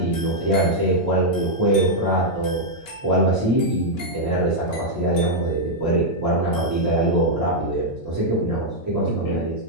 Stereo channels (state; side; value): normal; both; correlation -0.04